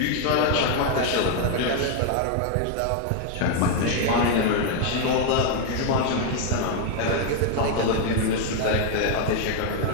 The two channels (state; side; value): different; both; correlation 0.00